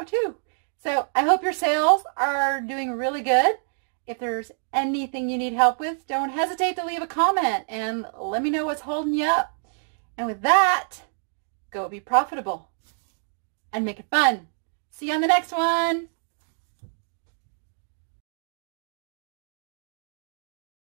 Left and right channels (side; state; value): left; silent; digital silence